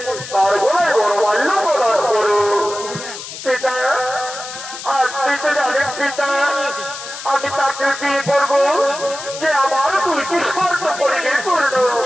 তার গলায় গণমাল্য প্রদান করো। পিতা, আপনি তো জানেন পিতা, আমি তাকে বিয়ে করবো যে আমার দুইটি শর্ত পরিণে করল।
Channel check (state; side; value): noise; left; hiss, 11 dB below the sound